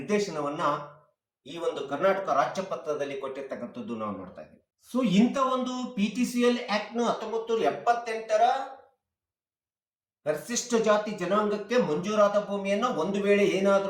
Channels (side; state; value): both; identical; correlation 1.00